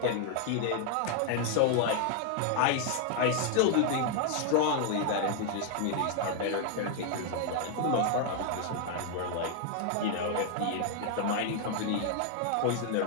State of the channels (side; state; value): both; different; correlation 0.00